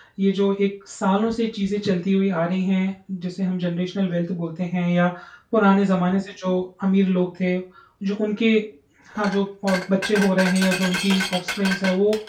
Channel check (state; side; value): identical; both; correlation 1.00